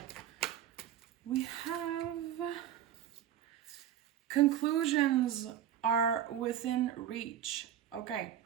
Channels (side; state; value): left; quieter; 10.6 dB